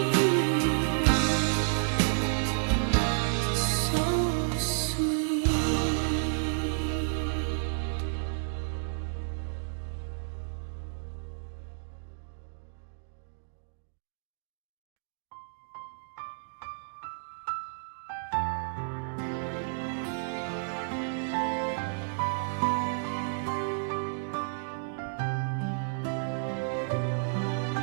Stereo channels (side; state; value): left; silent; digital silence